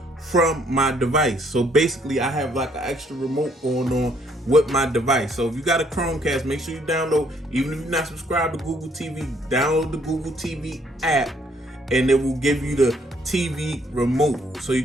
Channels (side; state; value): both; normal; correlation 0.66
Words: from my device. So basically I have like an extra remote going on with my device. So if you got a Chromecast, make sure you download, even if you're not subscribed to Google TV, download the Google TV app and it will give you the TV remote so you